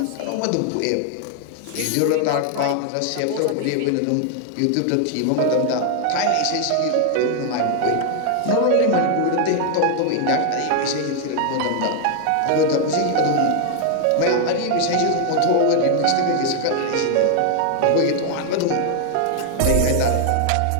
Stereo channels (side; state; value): both; different; correlation 0.00